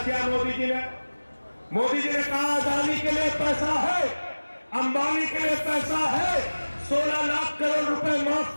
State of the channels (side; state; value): both; inverted; correlation -1.00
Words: मोदी जी ने? मोदी जी ने कहा अदानी के लिए पैसा है, अंबानी के लिए पैसा है, 16 लाख करोड़ रुपए माफ